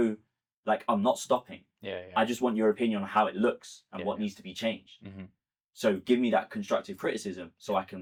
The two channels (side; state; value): both; identical; correlation 1.00